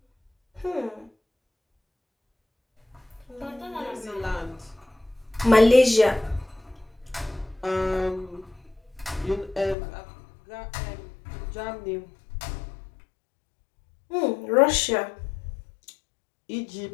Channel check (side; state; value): right; drops out; at 9.8 s